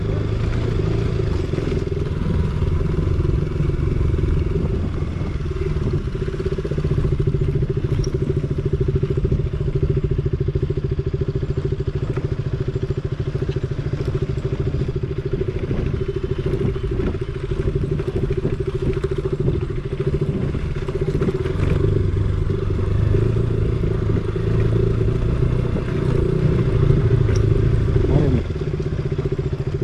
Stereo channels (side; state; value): both; identical; correlation 1.00